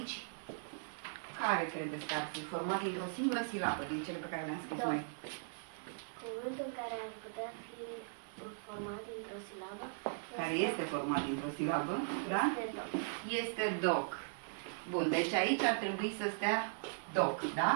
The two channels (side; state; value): left; silent; 52 dB below the other